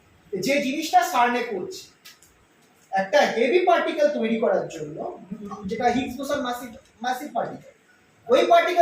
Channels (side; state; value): both; identical; correlation 1.00